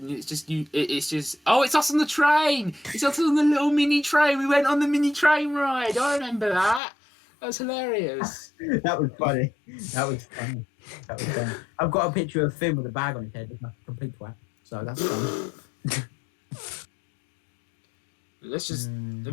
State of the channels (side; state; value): right; drops out; at 6.8 s